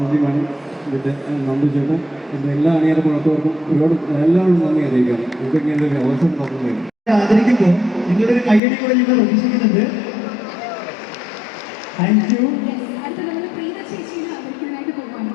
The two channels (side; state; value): right; drops out; at 8.6 s